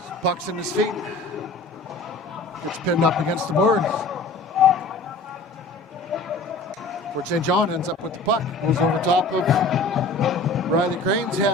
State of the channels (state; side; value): quieter; right; 3.1 dB